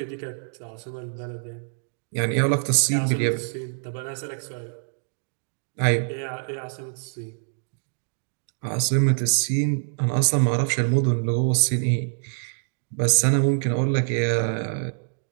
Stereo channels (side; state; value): left; silent; digital silence